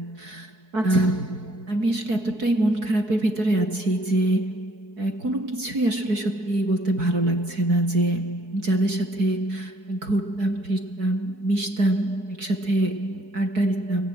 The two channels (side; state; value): left; late; 4.6 ms